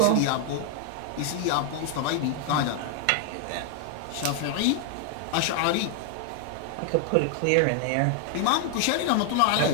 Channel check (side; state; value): both; different; correlation 0.01